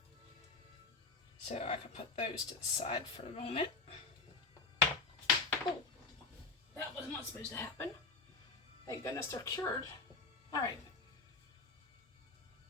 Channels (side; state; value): right; quieter; 3.9 dB